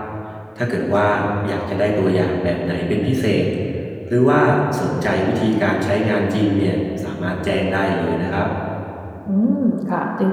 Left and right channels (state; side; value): identical; both; correlation 1.00